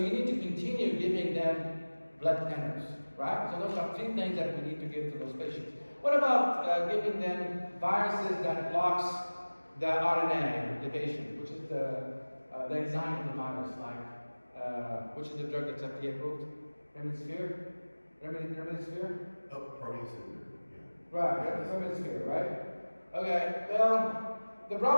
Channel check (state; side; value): inverted; both; correlation -1.00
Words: need to continue giving them blood thinners, right? So those are three things that we need to give to those patients. What about giving them viruses that blocks the RNA division, which is the enzyme of the virus, like, which is the drug that's FDA approved? Remdesivir? Remdesivir? Oh, Parkinson. Yeah. Right, Remdesivir, right? Okay, well, the